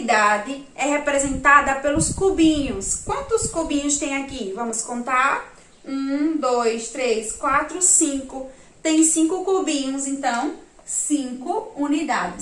é representada pelos cubinhos. Quantos cubinhos tem aqui? Vamos contar. 1, 2, 3, 4, 5. Tem 5 cubinhos, então, 5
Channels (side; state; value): both; identical; correlation 1.00